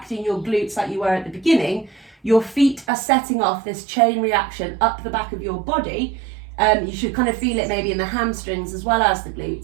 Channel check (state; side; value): drops out; left; at 2.9 s